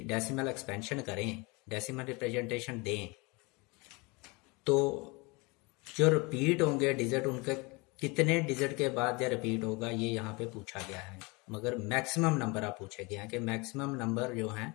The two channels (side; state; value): right; quieter; 27.0 dB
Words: डेसिमल एक्सपेंशन करें, डेसिमल रिप्रेजेंटेशन दें, तो जो रिपीट होंगे डिजिट उनके कितने डिजिट के बाद या रिपीट होगा ये यहाँ पे पूछा गया है। मगर मैक्सिमम नंबर आप पूछे गए हैं कि मैक्सिमम नंबर जो हैं